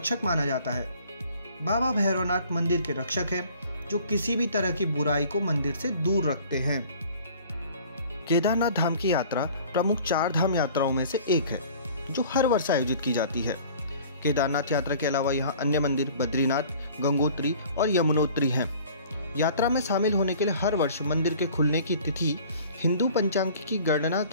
माना जाता है। बाबा भैरवनाथ मंदिर के रक्षक हैं, जो किसी भी तरह की बुराई को मंदिर से दूर रखते हैं। केदारनाथ धाम की यात्रा प्रमुख 4 धाम यात्राओं में से एक है, जो हर वर्ष आयोजित की जाती है। केदारनाथ यात्रा के अलावा यहाँ अन्य मंदिर बद्रीनाथ, गंगोत्री और यमुनोत्री हैं। यात्रा में शामिल होने के लिए हर वर्ष मंदिर के खुलने की तिथि हिंदू पंचांग की गणना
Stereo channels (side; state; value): both; inverted; correlation -0.49